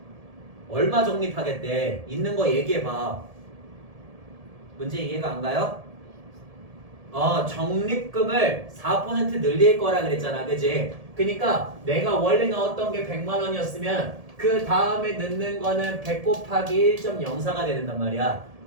얼마 적립하겠대? 있는 거 얘기해봐. 문제 이해가 안 가요? 적립금을 4% 늘릴 거라 그랬잖아, 그지? 그니까 내가 원래 넣었던 게 100만 원이었으면 그 다음에 넣는 거는 100 곱하기 1.04가 된단 말이야.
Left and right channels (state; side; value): late; left; 1.7 ms